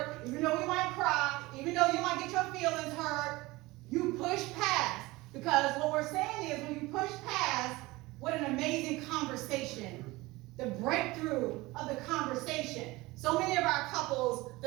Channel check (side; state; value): left; quieter; 21.0 dB